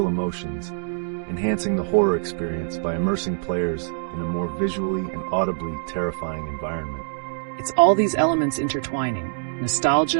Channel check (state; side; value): silent; left; digital silence